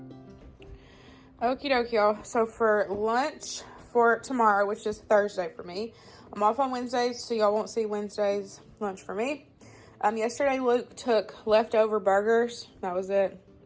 Okie dokie, y'all. So for lunch for tomorrow, which is Thursday for me, I'm off on Wednesdays, so y'all won't see Wednesday's lunch for me. Yesterday, Luke took leftover burgers. That was it.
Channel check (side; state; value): both; identical; correlation 1.00